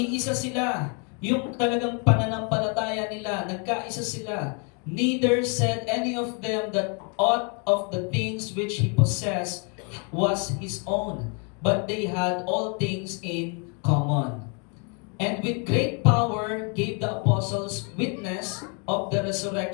sila. Yung talagang pananampalataya nila, nagkaisa sila. Neither said any of them that aught of the things which he possessed was his own, but they had all things in common. And with great power gave the apostles witness of the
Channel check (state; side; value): quieter; right; 36.5 dB